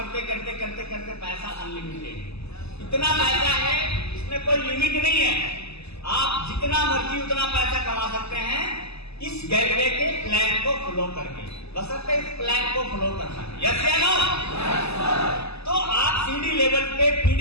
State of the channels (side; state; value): right; late; 0.79 ms